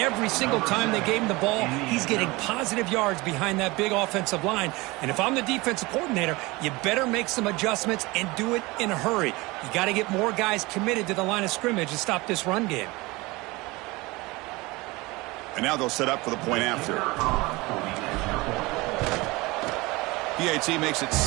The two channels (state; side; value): quieter; left; 22.7 dB